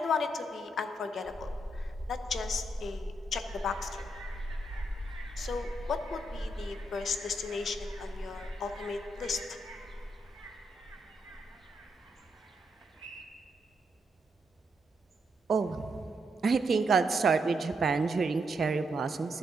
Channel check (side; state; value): both; normal; correlation 0.80